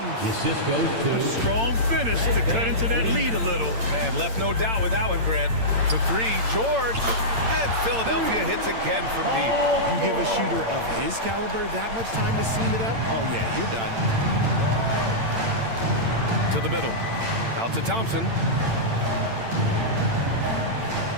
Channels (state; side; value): late; left; 8.8 ms